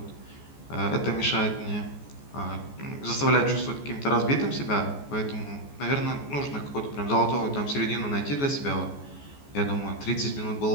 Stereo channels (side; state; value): right; late; 14 ms